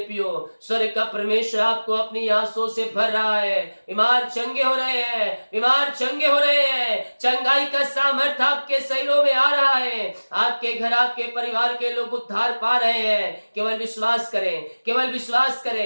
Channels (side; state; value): both; inverted; correlation -1.00